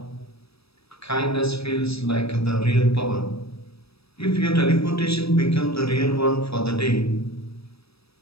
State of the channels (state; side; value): late; right; 0.78 ms